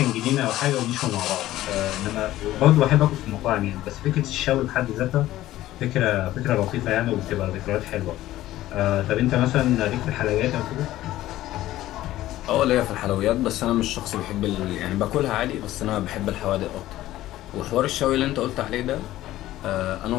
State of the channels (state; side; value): quieter; right; 15.0 dB